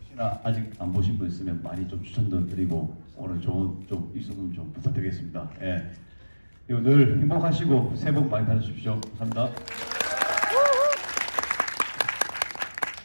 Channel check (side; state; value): both; inverted; correlation -1.00